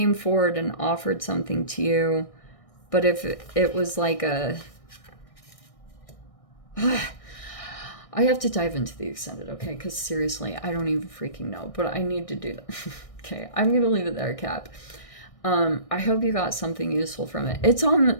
forward and offered something to you, but if it was like a I have to dive into the extended, okay? Because seriously, I don't even freaking know, but I need to do that. Okay, I'm gonna leave it there, Cap. I hope you got something useful from it.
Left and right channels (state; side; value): late; right; 1.6 ms